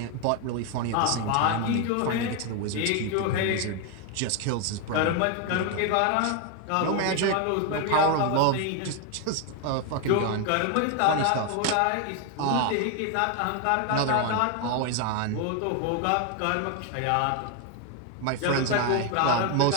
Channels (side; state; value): both; different; correlation 0.01